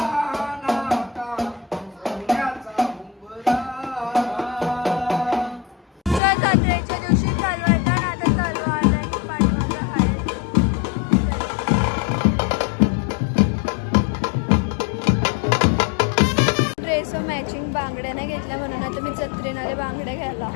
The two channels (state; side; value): drops out; right; at 6.2 s